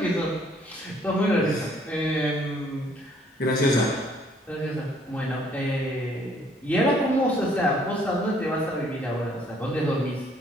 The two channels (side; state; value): both; normal; correlation 0.63